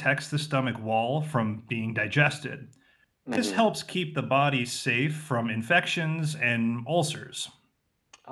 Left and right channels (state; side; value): identical; both; correlation 1.00